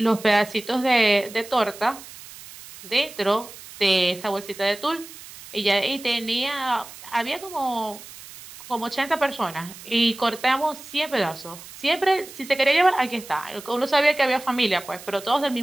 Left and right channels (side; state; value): right; noise; hiss, 16 dB below the sound